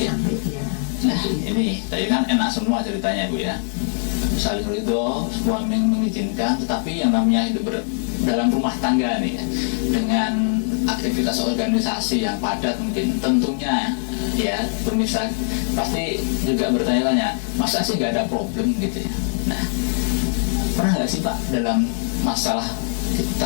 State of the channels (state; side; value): silent; right; digital silence